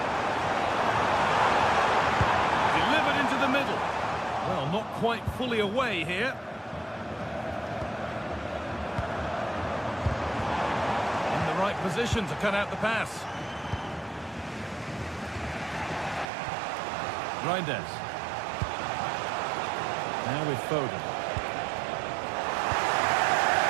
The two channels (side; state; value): left; drops out; at 16.2 s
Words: Delivered into the middle. Well, not quite fully away here. In the right position to cut out the pass. Reinders. Now with Foden.